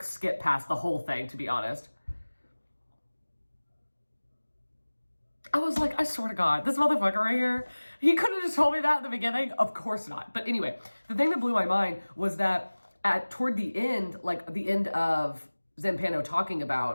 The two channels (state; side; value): inverted; both; correlation -1.00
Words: skip past the whole thing, to be honest." I was like, I swear to God, this motherfucker right here, he could have just told me that at the beginning. Of course not. But anyway, the thing that blew my mind was that toward the end, like the end of Zampano talking